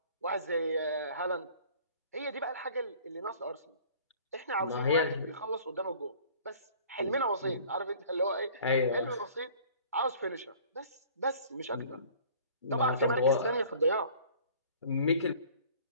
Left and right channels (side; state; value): both; inverted; correlation -0.50